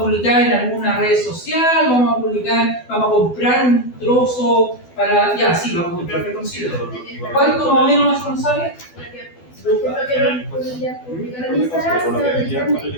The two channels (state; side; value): late; right; 12 ms